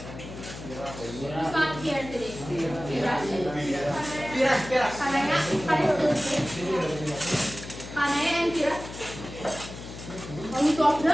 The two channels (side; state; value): left; noise; hum, 12 dB below the sound